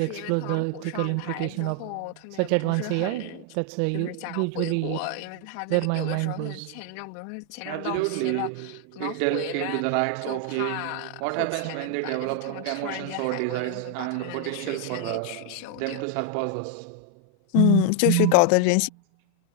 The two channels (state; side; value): different; both; correlation 0.00